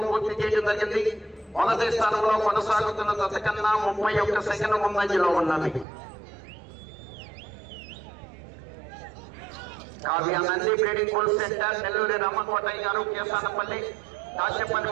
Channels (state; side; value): drops out; left; at 5.9 s